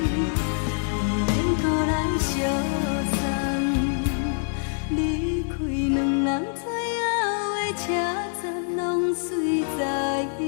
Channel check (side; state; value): right; silent; 62 dB below the other